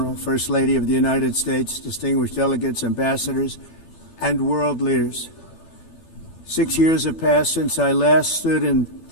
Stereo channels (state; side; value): late; right; 12 ms